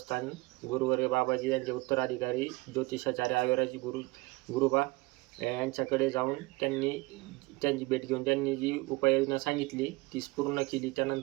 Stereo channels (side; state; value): left; quieter; 23.0 dB